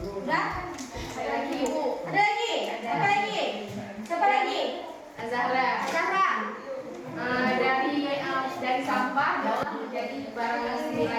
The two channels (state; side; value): identical; both; correlation 1.00